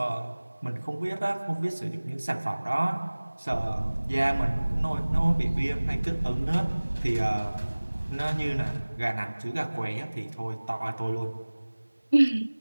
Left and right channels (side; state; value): both; inverted; correlation -1.00